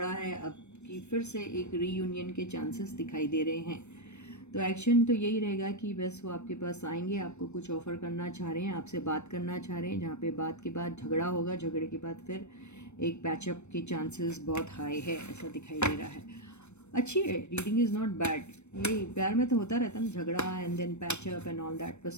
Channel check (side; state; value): right; late; 0.82 ms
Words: है, अब की फिर से एक रीयूनियन के चांसेस दिखाई दे रहे हैं। तो एक्शन तो यही रहेगा कि बस वो आपके पास आएंगे, आपको कुछ ऑफ़र करना चाह रहे हैं, आपसे बात करना चाह रहे हैं, जहाँ पे बात के बाद झगड़ा होगा, झगड़े के बाद फिर एक पैचअप के चांसेस बहुत हाई है, ऐसा दिखाई दे रहा है। अच्छी है, रीडिंग इज़ नॉट बैड। ये प्यार में तो होता रहता है ना, झगड़ा and then patch up and all that,